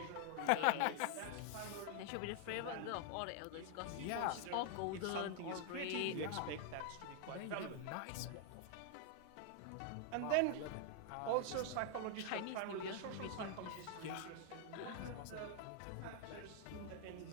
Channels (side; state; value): both; different; correlation 0.00